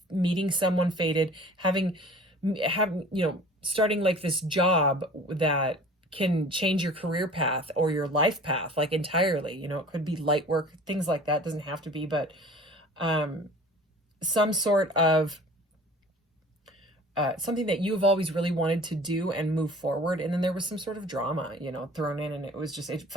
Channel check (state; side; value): normal; both; correlation 0.45